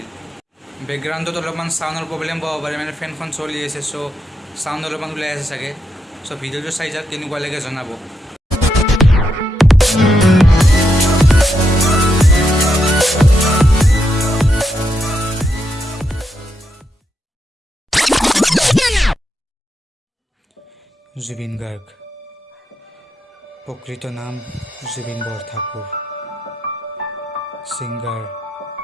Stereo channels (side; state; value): both; normal; correlation 0.81